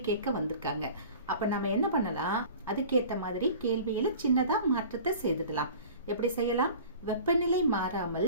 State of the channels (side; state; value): both; inverted; correlation -0.42